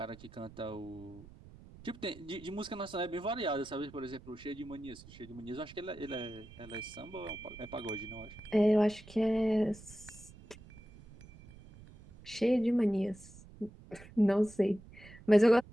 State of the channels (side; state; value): right; noise; rumble, 19 dB below the sound